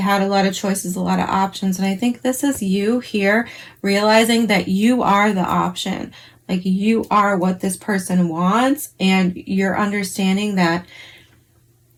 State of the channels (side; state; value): both; identical; correlation 1.00